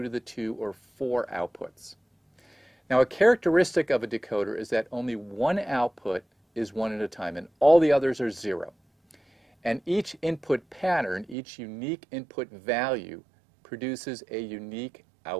to the 2 or 4 outputs. Now a characteristic of a decoder is that only one output is 1 at a time and all the others are 0. And each input pattern, each unique input value, produces a unique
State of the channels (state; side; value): drops out; left; at 11.4 s